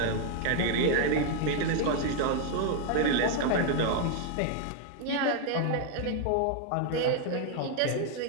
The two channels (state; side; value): different; both; correlation 0.00